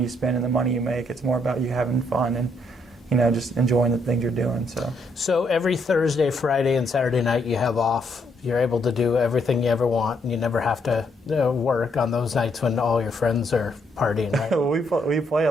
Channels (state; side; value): normal; both; correlation 0.73